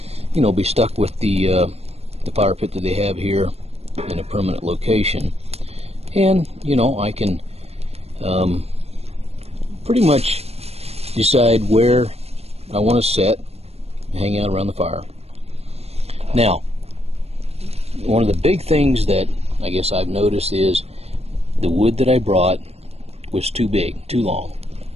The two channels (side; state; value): left; late; 0.30 ms